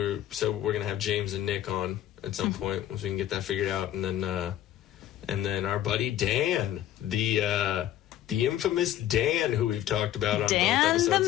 going to have James and Nick on at some point once we can get that figured out. And then our buddy Dan, the infamous Dan, who we've talked about on both episodes. Dan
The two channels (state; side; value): quieter; right; 12.3 dB